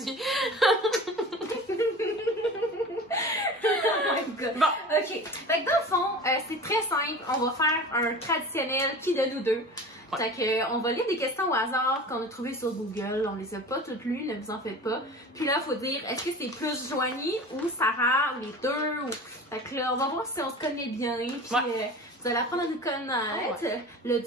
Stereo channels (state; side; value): normal; both; correlation 0.36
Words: Oh my God. Bon. Ok. Fait que dans le fond, c'est très simple. On va faire un traditionnel qui de nous deux. Ouais. Fait que, on va lire des questions au hasard qu'on a trouvées sur Google. On les a pas toutes lues, ne vous en faites pas. Puis là, il faut dire, est-ce que c'est plus Joanie ou Sarah, ou les deux? Ou... Fait que là, on va voir si on se connaît bien. Puis vous allez apprendre à nous connaître. Ouais. Le